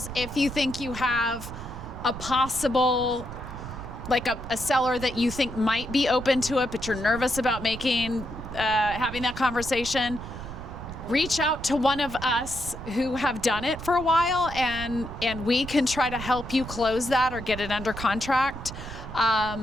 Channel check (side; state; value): right; noise; rumble, 11 dB below the sound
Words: if you think you have a possible like a seller that you think might be open to it, but you're nervous about having that conversation, reach out to one of us who have done it for a while, and we can try to help you close that or get it under contract.